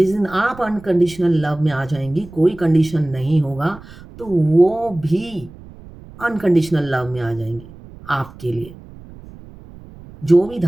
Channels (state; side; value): noise; right; rumble, 19 dB below the sound